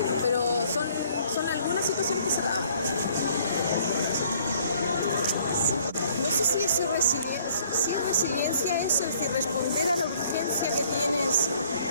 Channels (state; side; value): inverted; both; correlation -0.60